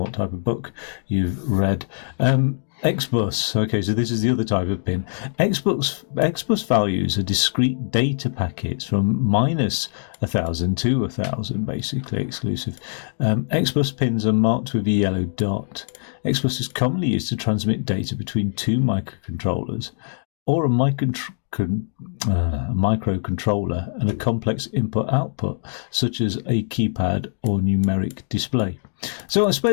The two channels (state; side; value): silent; right; digital silence